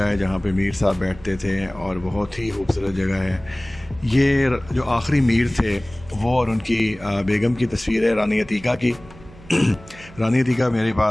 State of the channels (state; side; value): noise; right; hum, 21 dB below the sound